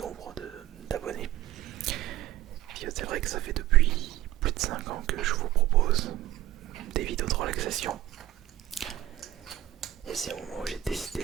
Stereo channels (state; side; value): quieter; left; 13.8 dB